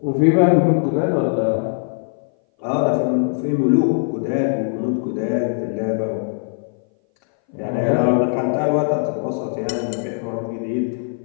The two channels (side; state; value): right; silent; 59 dB below the other